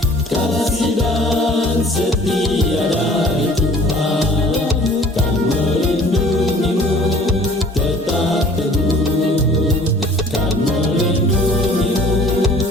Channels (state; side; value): normal; both; correlation 0.51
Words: kasih dan setia dari Tuhan kan melindungimu tetap teguh, kan melindungimu